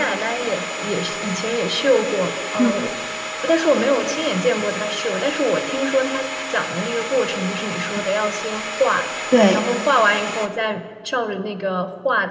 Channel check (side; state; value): both; identical; correlation 1.00